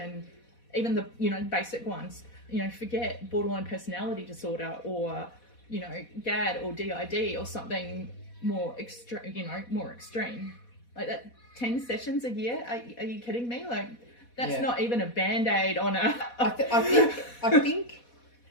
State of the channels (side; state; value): right; late; 4.1 ms